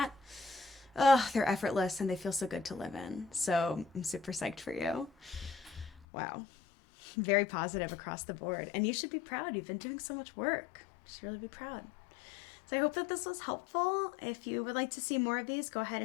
they're effortless and they feel so good to live in. So I'm super psyched for you. Wow. Very positive across the board. And you should be proud. You've been doing so much work. You should really be proud. So I hope that this was helpful. If you would like to see more of these, go ahead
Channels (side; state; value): right; drops out; at 6.1 s